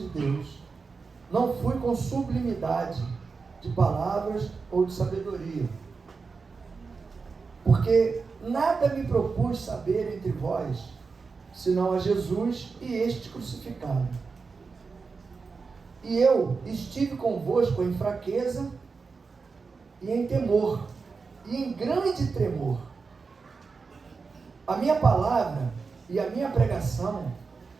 Deus, não fui com sublimidade de palavras ou de sabedoria, porque nada me propus saber entre vós, senão a Jesus e este crucificado. E eu estive convosco em fraqueza e em temor, e em grande tremor. A minha palavra e a minha pregação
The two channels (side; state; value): left; quieter; 4.7 dB